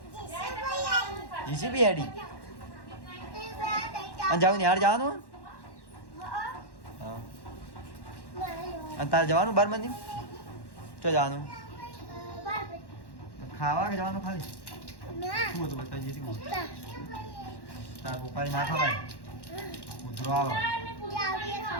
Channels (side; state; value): right; late; 1.1 ms